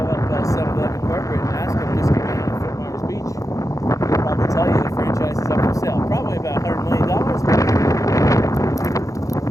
Tell you the franchise is up for sale. Probably about $100 million.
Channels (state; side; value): late; right; 0.16 ms